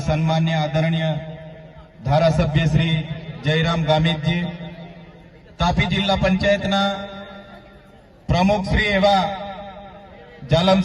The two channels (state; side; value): identical; both; correlation 1.00